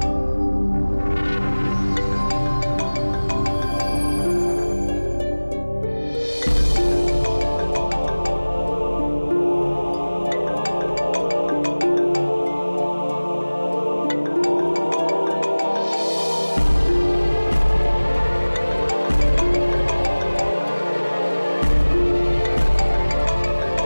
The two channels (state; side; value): inverted; both; correlation -1.00